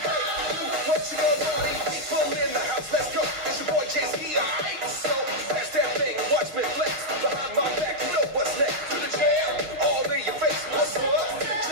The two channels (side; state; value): left; late; 6.0 ms